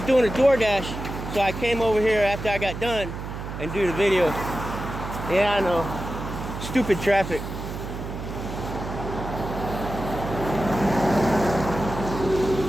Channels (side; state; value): right; noise; hum, 8 dB below the sound